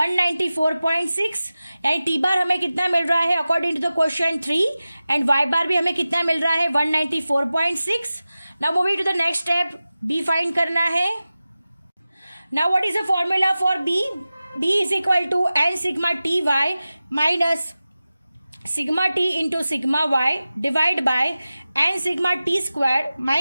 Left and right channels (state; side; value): inverted; both; correlation -0.95